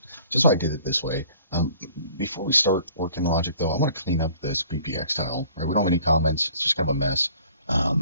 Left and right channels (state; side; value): inverted; both; correlation -0.53